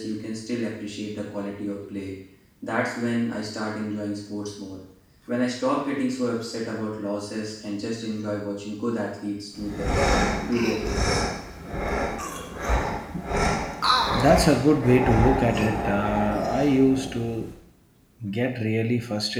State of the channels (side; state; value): both; identical; correlation 1.00